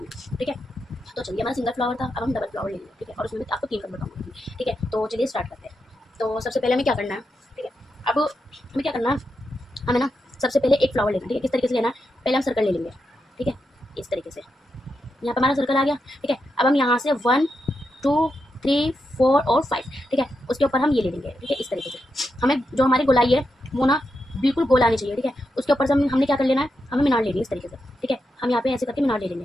ठीक है। तो चलिए, हमारा सिंगल फ्लावर था, अब हम डबल फ्लावर लेंगे, ठीक है, और उसमें आपको 3 कलर बताऊंगी, ठीक है। तो चलिए स्टार्ट करते हैं। तो सबसे पहले हमें क्या करना है, ठीक है। अब हमें क्या करना है, हमें ना सबसे पहले एक फ्लावर लेना है, ठीक है। किस तरीके से लेना है, पहले हम सर्कल ले लेंगे, ठीक है, इस तरीके से। यहाँ पर हमारा सर्कल आ गया, ठीक है। अब हम यहाँ से 1 2 3 4 और 5, ठीक है, उसके ऊपर हम ये ले लेंगे, ठीक है, इस तरीके से। हमें जो हमारी गोलाई है वो ना बिल्कुल गोल आनी चाहिए, ठीक है। उसके ऊपर से हमने क्या कर लेना है, हमें मीनार लेनी है इस तरीके से, ठीक है। हम यहाँ पे ऐसे करके मीनार ले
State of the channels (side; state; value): both; normal; correlation 0.86